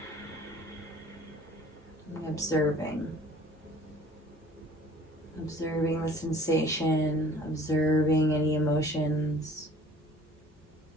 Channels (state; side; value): normal; both; correlation 0.51